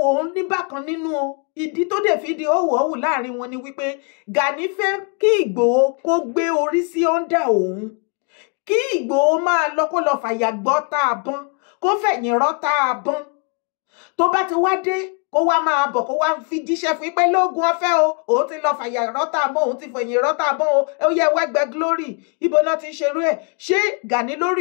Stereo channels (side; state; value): right; quieter; 38.4 dB